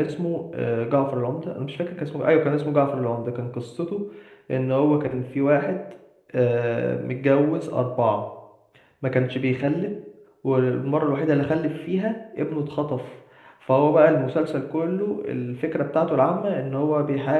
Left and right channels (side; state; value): both; identical; correlation 1.00